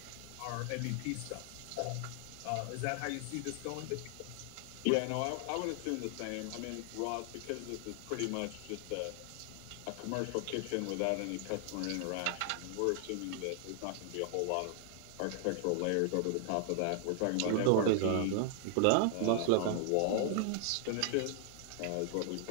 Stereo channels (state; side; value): different; both; correlation 0.00